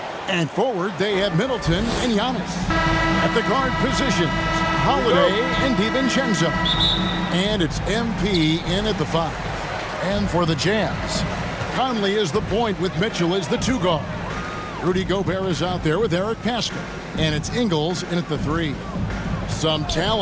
And forward, they have Middleton and Giannis. At the guard positions, Holiday and DiVincenzo. And it's MP in at the 5. And for the Jazz, Conley is the point with Mitchell as the 2 guard. Rudy Gobert is out there with Eric Pascal. And it's Ingles in at the 3. Some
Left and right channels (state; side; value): identical; both; correlation 1.00